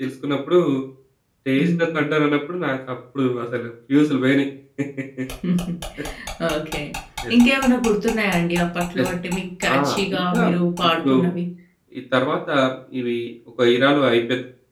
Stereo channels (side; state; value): both; identical; correlation 1.00